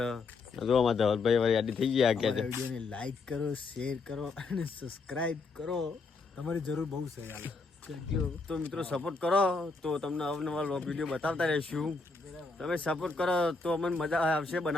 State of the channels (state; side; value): quieter; right; 4.0 dB